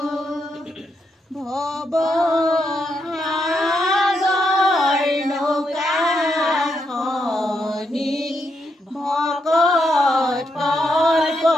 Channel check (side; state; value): both; normal; correlation 0.80